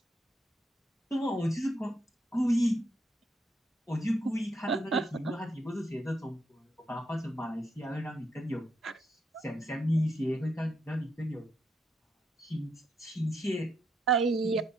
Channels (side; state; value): both; normal; correlation 0.78